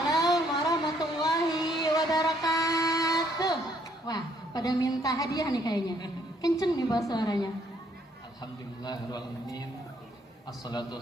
warahmatullahi wabarakatuh. Wah, pada minta hadiah nih kayaknya. Kenceng nih bahasa suaranya. Alhamdulillahirrahmanirrahim. Assalatu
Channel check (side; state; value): both; normal; correlation 0.68